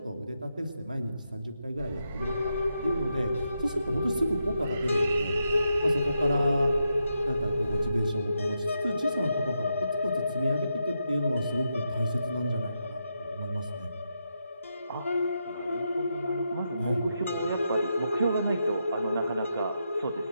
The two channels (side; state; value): both; inverted; correlation -0.84